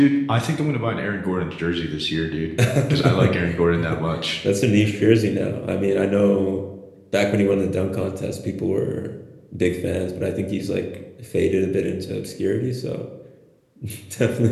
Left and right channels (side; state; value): both; identical; correlation 1.00